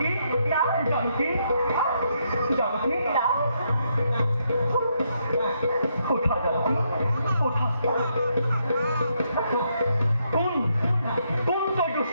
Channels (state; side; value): inverted; both; correlation -0.77